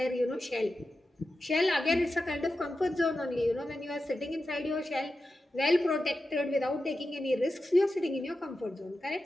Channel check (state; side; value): normal; both; correlation 0.91